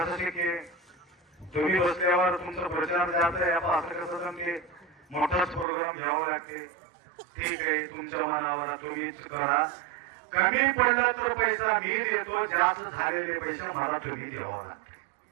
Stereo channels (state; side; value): drops out; left; at 5.7 s